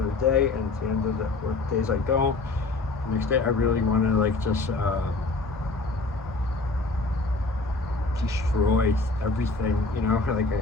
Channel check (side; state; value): right; quieter; 3.5 dB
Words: day, and at the end of the work days I don't. The next day I really want to like just destroy everything, you know. Like